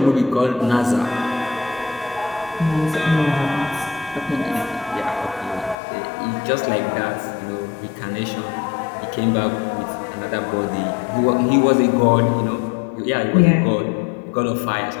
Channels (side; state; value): right; drops out; at 5.8 s